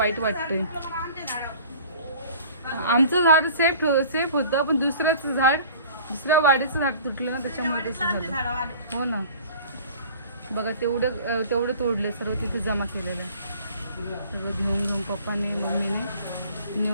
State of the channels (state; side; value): inverted; both; correlation -0.46